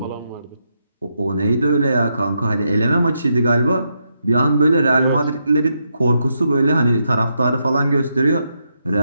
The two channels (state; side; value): inverted; both; correlation -0.81